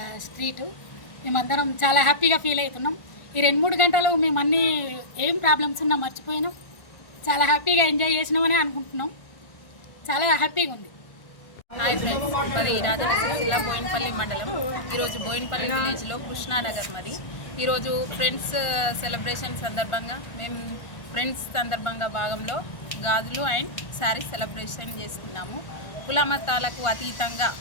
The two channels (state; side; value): late; right; 1.4 ms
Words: స్ట్రీటు. మేమందరం చాలా హ్యాపీగా ఫీల్ అవుతున్నాం. ఈ 2-3 గంటలు మేము అన్నీ ఏం ప్రాబ్లమ్స్ ఉన్నా మర్చిపోయినాం. చాలా హ్యాపీగా ఎంజాయ్ చేసినామని అనుకుంటున్నాం. చాలా హ్యాపీగా ఉంది. హాయ్ ఫ్రెండ్స్, మరి రాజన్న సిరిసిల్ల బోయినపల్లి మండలం. ఈరోజు బోయినపల్లి విలేజ్లో కృష్ణానగర్ మరి. ఈరోజు ఫ్రెండ్స్ సెలబ్రేషన్ సందర్భంగా మేము ఫ్రెండ్స్ సందర్భంగా భాగంలో గాజులు అండ్ శారీస్ సెలబ్రేషన్ చేసుకున్నాము. కులమతాలకు అతీతంగా